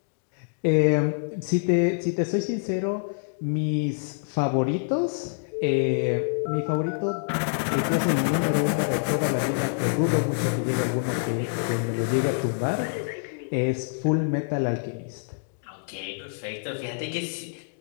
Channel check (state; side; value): silent; right; digital silence